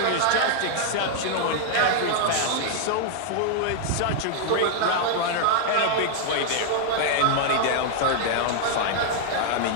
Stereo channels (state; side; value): different; both; correlation -0.01